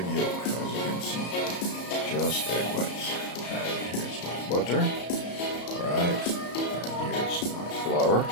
yolk as you can see, just egg whites. And here's my butter. Alright, and here's my flour,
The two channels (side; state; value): right; late; 34 ms